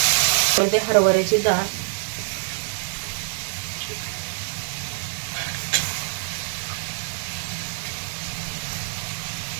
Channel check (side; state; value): left; silent; digital silence